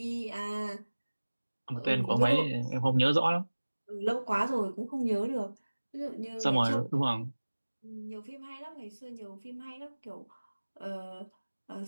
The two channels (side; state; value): both; inverted; correlation -1.00